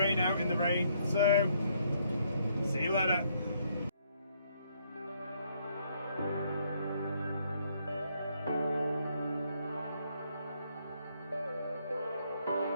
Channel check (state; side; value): inverted; both; correlation -0.70